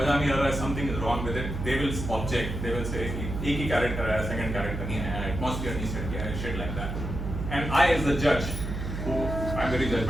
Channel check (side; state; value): right; noise; hum, 5 dB below the sound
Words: नहीं आ रहा है, something is wrong with it, they will object. They will say कि एक ही कैरेक्टर है, सेकंड कैरेक्टर नहीं है, एटमॉस्फेयर नहीं सेट किया है, shit like that. And I as the judge, who I'm very